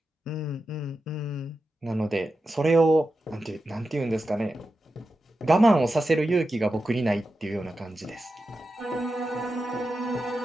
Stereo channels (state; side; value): normal; both; correlation 0.91